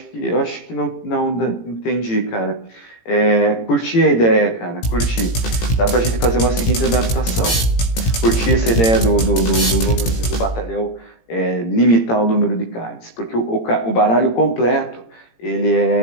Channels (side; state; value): right; late; 18 ms